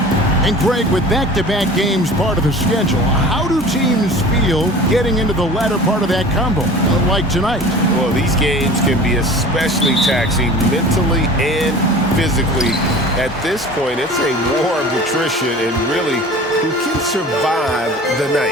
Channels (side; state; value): both; normal; correlation 0.41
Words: And Greg, with back-to-back games part of the schedule, how do teams feel getting into the latter part of that combo, like tonight? Well, these games can be especially taxing mentally and physically. At this point, it's a war of attrition, and really, who can survive the